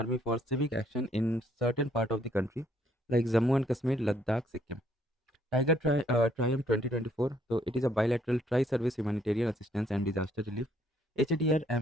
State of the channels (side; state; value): both; normal; correlation 0.67